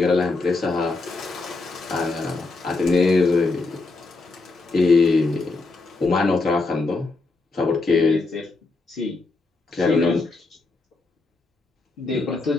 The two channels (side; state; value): right; quieter; 3.5 dB